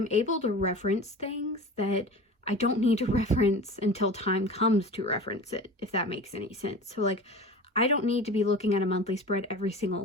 able to reference things that I don't need to reference until time comes to reference it, if that makes any sense. So like, I don't need to be looking at a monthly spread every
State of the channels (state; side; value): normal; both; correlation 0.35